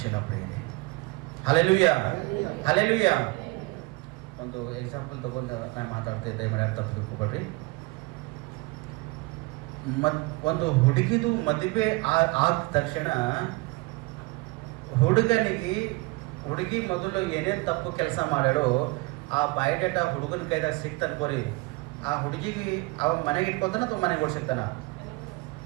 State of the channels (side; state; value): left; quieter; 24.5 dB